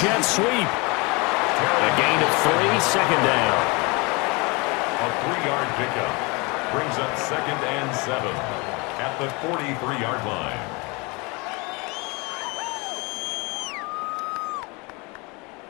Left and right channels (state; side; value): quieter; right; 27.7 dB